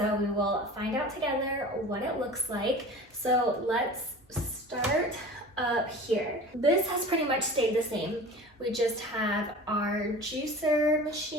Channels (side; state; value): both; normal; correlation 0.38